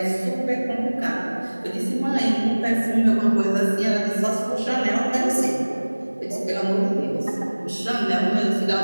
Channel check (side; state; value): both; inverted; correlation -1.00